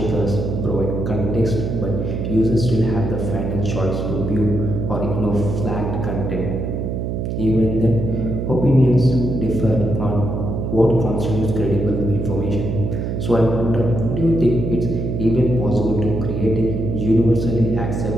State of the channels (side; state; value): right; noise; hum, 2 dB below the sound